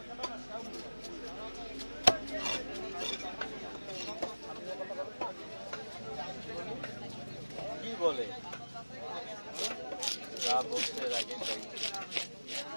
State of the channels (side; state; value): both; inverted; correlation -1.00